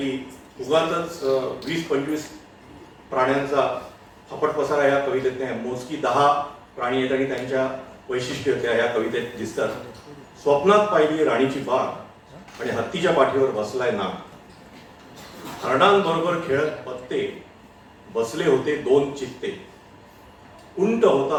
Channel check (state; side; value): identical; both; correlation 1.00